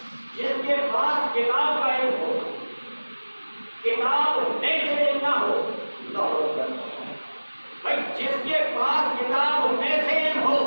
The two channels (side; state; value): both; inverted; correlation -1.00